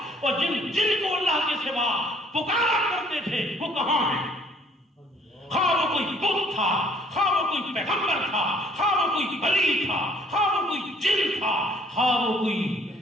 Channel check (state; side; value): normal; both; correlation 0.59